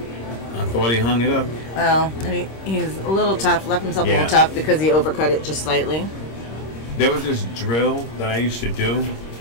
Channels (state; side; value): late; right; 26 ms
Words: I thought he hung it up. Well, and he's a little tough. Left himself a little tough because he overcut it just slightly. There was this drill that I used to do